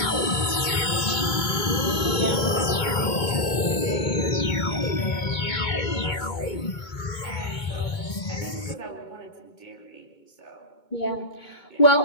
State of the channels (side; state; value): right; late; 2.2 ms